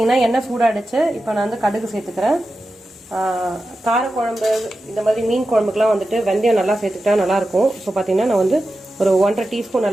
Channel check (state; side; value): normal; both; correlation 0.92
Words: எண்ணெய் சூடாகிடுச்சு. இப்போ நான் வந்து கடுகு சேர்த்துக்கிறேன். காரக்குழம்பு இந்த மாதிரி மீன் குழம்புக்குலாம் வந்துட்டு வெந்தயம் நல்லா சேர்த்துக்கிட்டா நல்லாயிருக்கும். ஸோ பார்த்தீங்கன்னா நான் வந்து ஒரு 1.5 டீஸ்பூன்